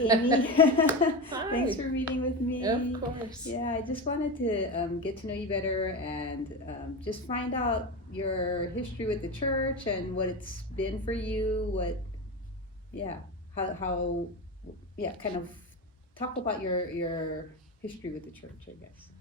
Amy. Thanks Hi. for meeting with Of me. course. Yeah, I just wanted to get to know you better and just find out your history with the church and what it's been for you. Yeah, how, yeah, kind of talk about your history with the church, I guess.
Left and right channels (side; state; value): both; normal; correlation 0.21